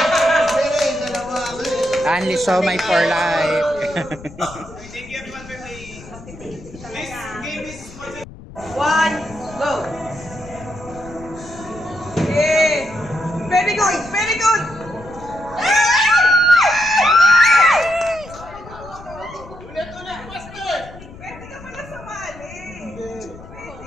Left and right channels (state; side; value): noise; left; rumble, 17 dB below the sound